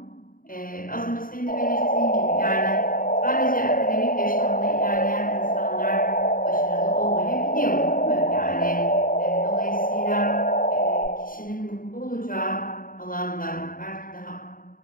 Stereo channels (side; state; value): right; late; 0.41 ms